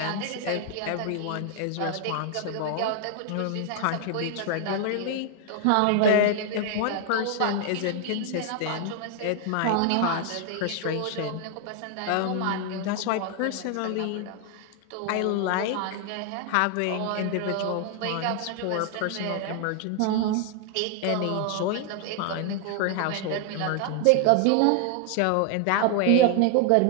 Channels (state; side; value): different; both; correlation 0.00